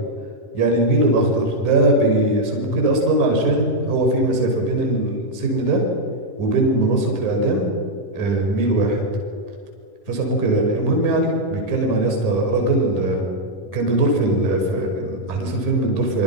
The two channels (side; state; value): right; late; 10 ms